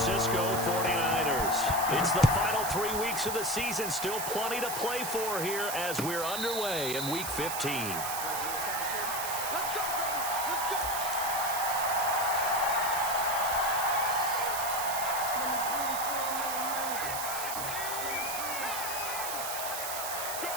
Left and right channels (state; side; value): noise; right; hiss, 4 dB below the sound